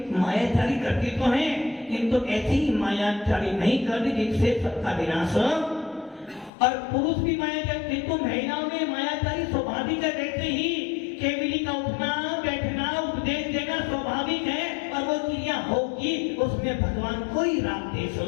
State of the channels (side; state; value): right; drops out; at 6.5 s